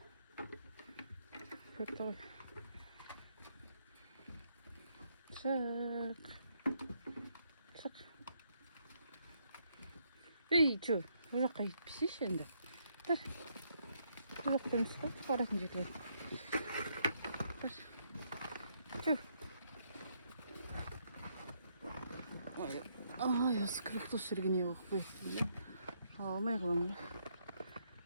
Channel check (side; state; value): both; inverted; correlation -0.74